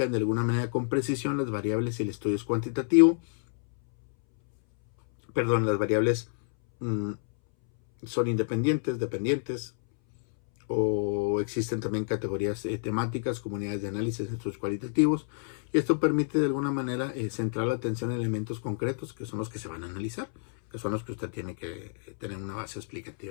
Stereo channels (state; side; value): silent; right; 59 dB below the other